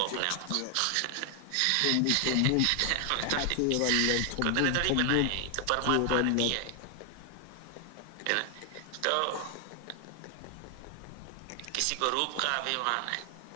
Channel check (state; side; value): different; both; correlation 0.00